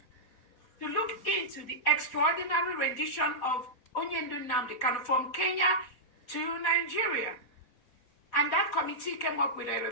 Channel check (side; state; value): right; late; 4.3 ms